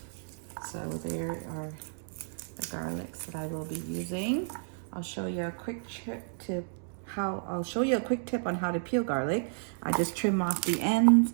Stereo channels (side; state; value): left; silent; digital silence